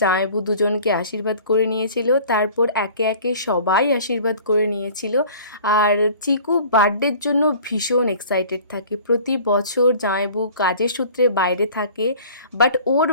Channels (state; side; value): inverted; both; correlation -0.46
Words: জামাইবু দুজনকে আশীর্বাদ করে নিয়েছিল, তারপর একে একে সবাই আশীর্বাদ করে নিয়েছিল। আর চিকু বার্থডের জন্য ভীষণ এক্সাইটেড থাকে। প্রতি বছর জামাইবু কাজের সূত্রে বাইরে থাকে, বাট ওর